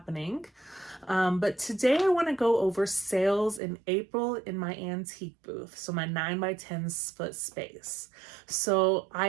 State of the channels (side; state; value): left; drops out; at 3.6 s